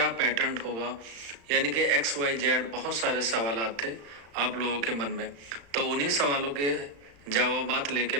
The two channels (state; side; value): late; left; 35 ms